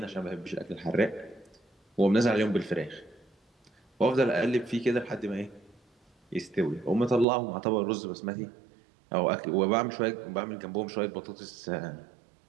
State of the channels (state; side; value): drops out; left; at 7.2 s